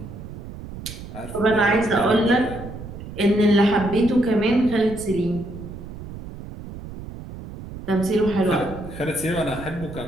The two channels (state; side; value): noise; right; rumble, 12 dB below the sound